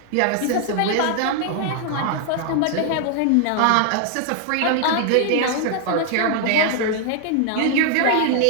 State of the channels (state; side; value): different; both; correlation 0.00